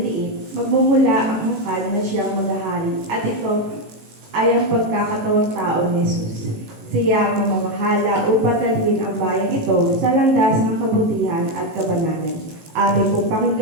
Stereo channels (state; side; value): late; left; 18 ms